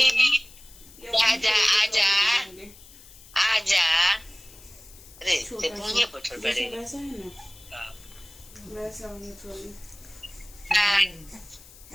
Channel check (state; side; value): noise; left; hiss, 21 dB below the sound